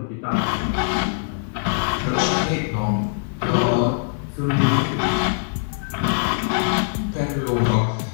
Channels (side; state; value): right; silent; digital silence